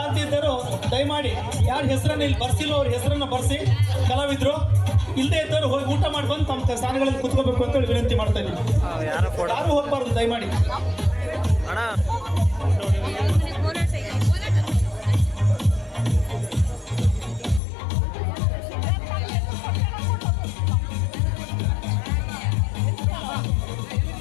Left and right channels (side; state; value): right; drops out; at 17.6 s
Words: ಆಗ್ತಿದ್ದರು ದಯಮಾಡಿ ಯಾರ ಹೆಸರನ್ನ ಇಲ್ಲಿ ಬರ್ಸಿಲ್ಲ ಅವ್ರ ಹೆಸರನ್ನ ಬರ್ಸಿ. ಕಲಾವಿದ್ರು ಇಲ್ಲದೆ ಇದ್ದವರು ಹೋಗಿ ಊಟ ಮಾಡಿ ಬಂದು ತಮ್ಮ ಸ್ಥಾನಗಳಲ್ಲಿ ಕುತ್ಕೋಬೇಕು ಅಂತ ಹೇಳಿ ವಿನಂತಿ ಮಾಡ್ತಾ ಇದ್ದೀನಿ. ಯಾರು ಹೋಗಬಾರ್ದು ದಯಮಾಡಿ.